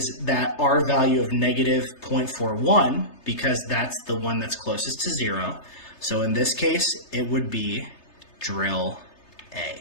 that R value of negative 0.41, because that's the one that's closest to 0. So in this case, it would be drill A.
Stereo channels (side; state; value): right; late; 3.3 ms